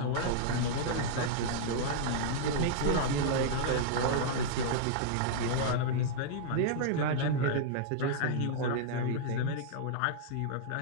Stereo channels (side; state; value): both; different; correlation -0.02